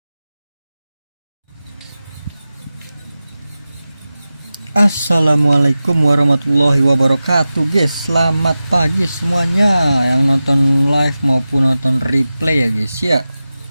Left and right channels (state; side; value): inverted; both; correlation -0.95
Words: Assalamualaikum warahmatullahi wabarakatuh guys. Selamat pagi semuanya yang nonton live maupun nonton replay ya guys ya.